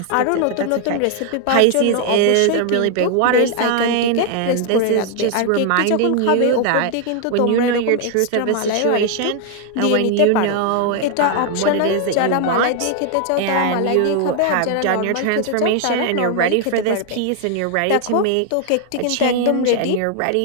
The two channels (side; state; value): both; different; correlation 0.00